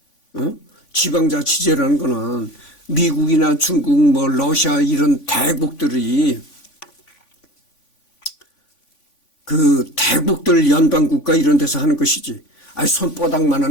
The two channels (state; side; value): late; right; 3.5 ms